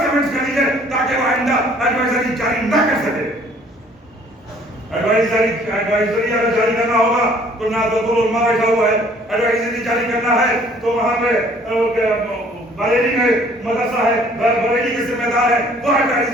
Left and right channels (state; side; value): normal; both; correlation 0.57